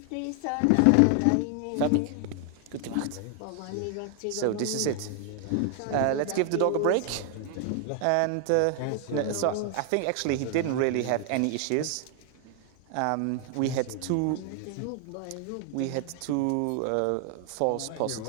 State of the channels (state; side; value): different; both; correlation 0.00